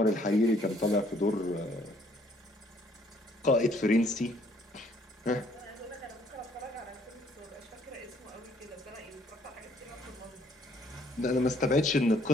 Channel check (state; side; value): normal; both; correlation 0.64